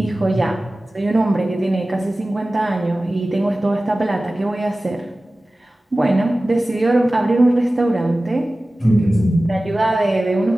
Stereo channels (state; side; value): normal; both; correlation 0.96